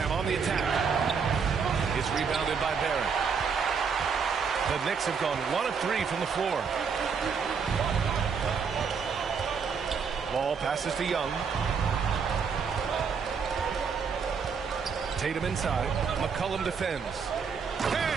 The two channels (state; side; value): quieter; left; 6.0 dB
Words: on the attack. It's rebounded by Barrett. The Knicks have gone 1 of 3 from the floor. Ball passes to Young. Tatum inside. McCollum defends.